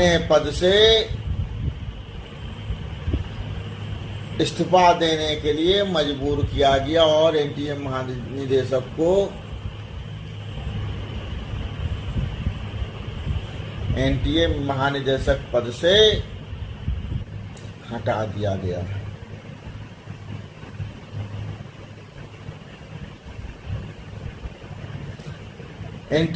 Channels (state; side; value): identical; both; correlation 1.00